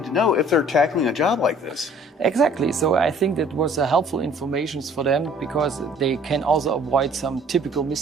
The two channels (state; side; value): normal; both; correlation 0.55